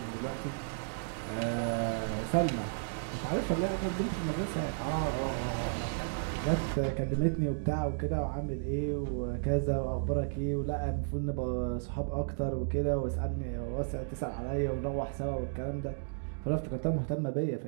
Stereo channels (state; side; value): silent; left; digital silence